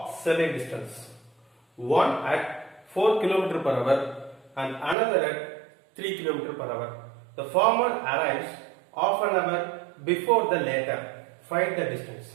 certain distance. One at 4 km per hour and another at 3 km per hour. The former arrives half an hour before the latter. Find the distance.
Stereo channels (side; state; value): left; drops out; at 5.0 s